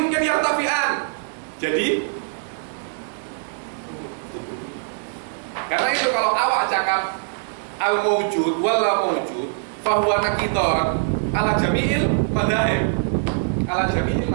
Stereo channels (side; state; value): left; silent; digital silence